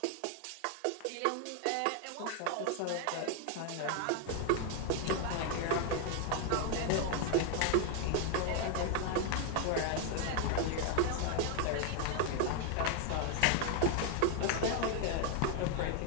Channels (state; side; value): different; both; correlation 0.00